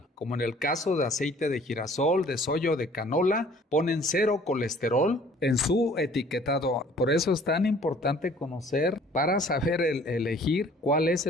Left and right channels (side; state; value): both; normal; correlation 0.54